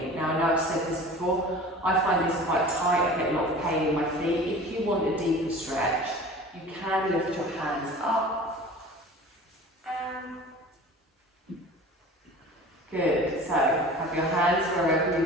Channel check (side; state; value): both; normal; correlation 0.40